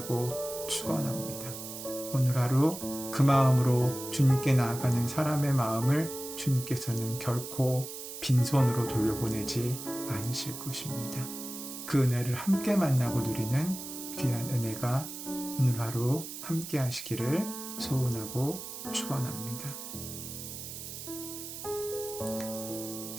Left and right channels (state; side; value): noise; right; hiss, 9 dB below the sound